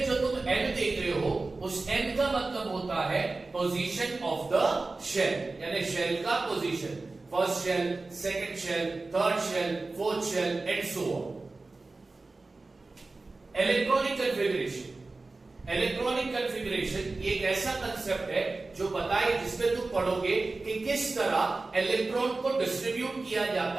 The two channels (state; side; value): quieter; left; 3.5 dB